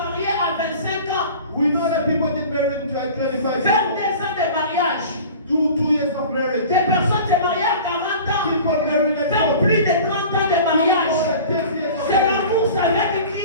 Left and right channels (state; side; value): inverted; both; correlation -0.40